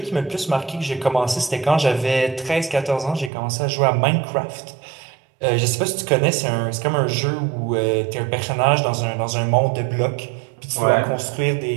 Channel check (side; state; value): left; drops out; at 3.3 s